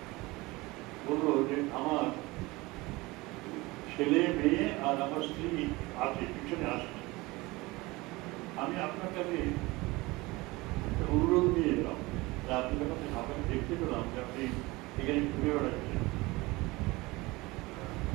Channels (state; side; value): quieter; left; 22.0 dB